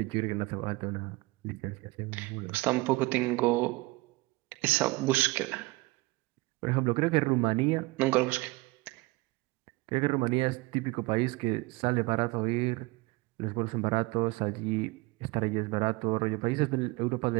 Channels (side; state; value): left; quieter; 22.9 dB